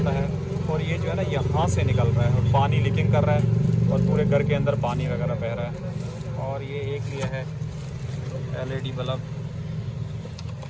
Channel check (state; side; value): identical; both; correlation 1.00